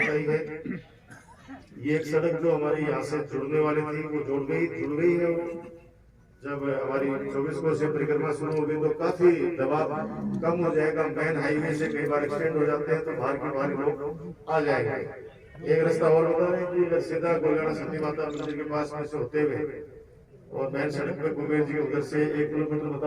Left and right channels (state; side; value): identical; both; correlation 1.00